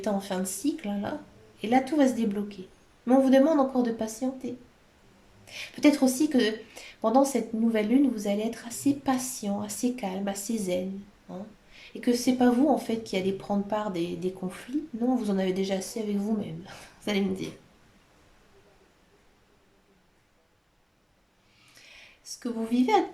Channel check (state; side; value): identical; both; correlation 1.00